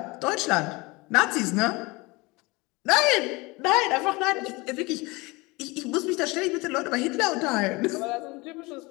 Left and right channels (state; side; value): quieter; right; 24.3 dB